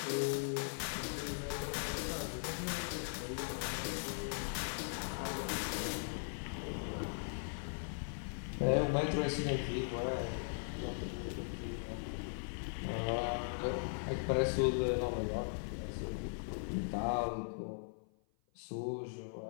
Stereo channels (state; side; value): silent; right; 52 dB below the other